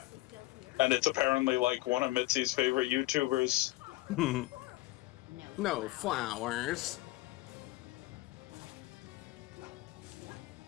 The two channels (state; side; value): quieter; right; 18.9 dB